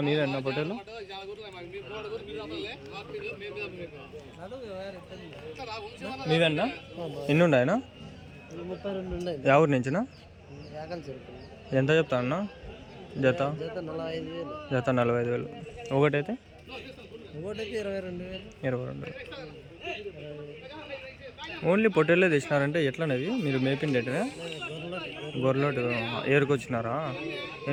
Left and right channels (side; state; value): both; identical; correlation 1.00